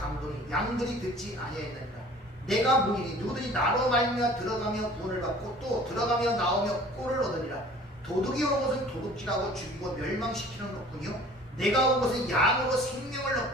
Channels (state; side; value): normal; both; correlation 0.48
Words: 양들이 듣지 아니하였느니라. 내가 문이니 누구든지 나로 말미암아 들어가며 구원을 받고 또 들어가며 나오며 꼴을 얻으리라. 도둑이 온 것은 도둑질하고 죽이고 멸망시키는 것뿐이요 내가 온 것은 양으로 생명을